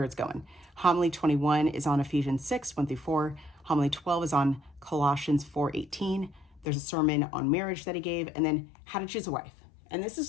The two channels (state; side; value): drops out; right; at 6.7 s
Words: it's going. Homily 21 is on Ephesians 6, 1 through 4. Homily 12 is on Colossians 4, 18. There's a sermon on marriage that he gave, and then how to choose a wife. And this